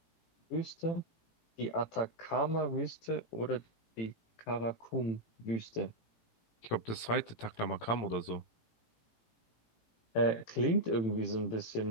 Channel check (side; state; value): right; late; 18 ms